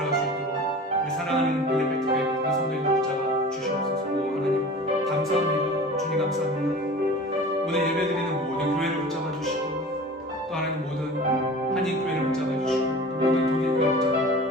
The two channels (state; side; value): normal; both; correlation 0.39